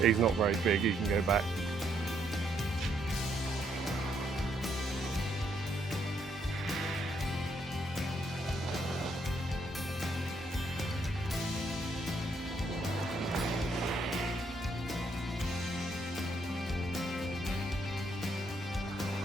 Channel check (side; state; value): both; normal; correlation 0.73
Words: not very big, he can go back.